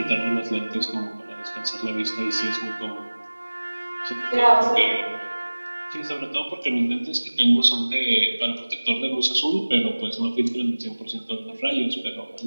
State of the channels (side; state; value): both; inverted; correlation -1.00